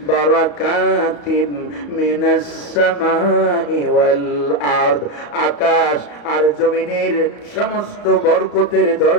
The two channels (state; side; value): late; right; 34 ms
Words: বারাকাতিন মিনাস সামাই ওয়াল আরদ। আকাশ আর জমিনের সমস্ত বরকতের